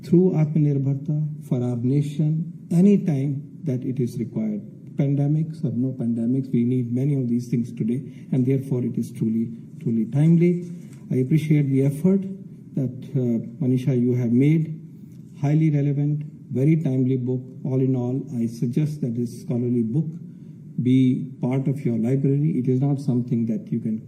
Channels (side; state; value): both; identical; correlation 1.00